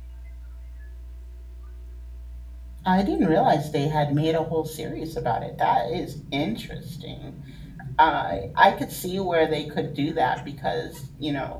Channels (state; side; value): identical; both; correlation 1.00